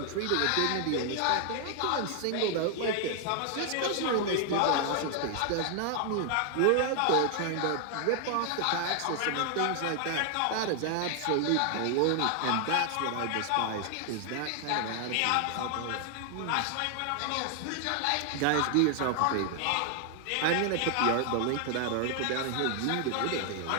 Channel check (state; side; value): different; both; correlation 0.00